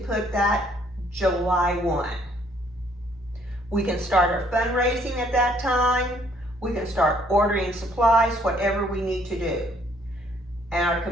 that July 1. We can start our fundraising at that time. We can start ordering supplies, whatever we need to do. And our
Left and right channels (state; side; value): normal; both; correlation 0.64